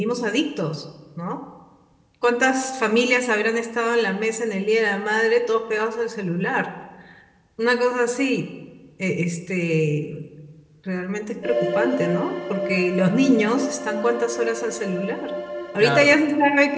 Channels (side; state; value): both; identical; correlation 1.00